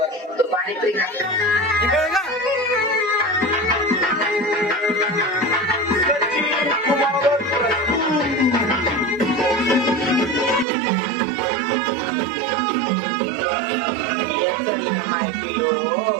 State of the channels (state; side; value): drops out; left; at 10.7 s